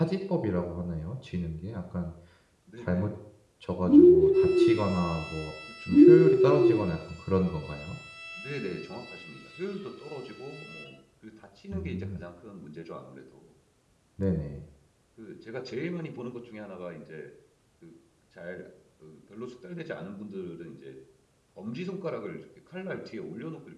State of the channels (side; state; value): both; identical; correlation 1.00